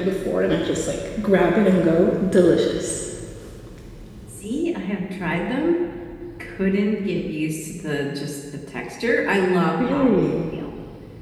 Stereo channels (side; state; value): both; identical; correlation 1.00